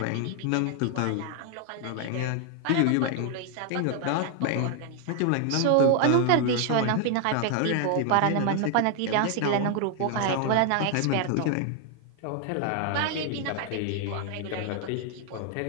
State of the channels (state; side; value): different; both; correlation 0.00